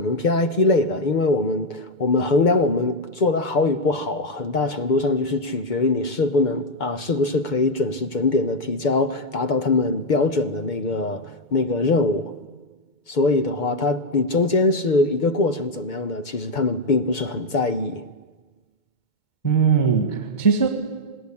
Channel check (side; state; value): right; late; 2.2 ms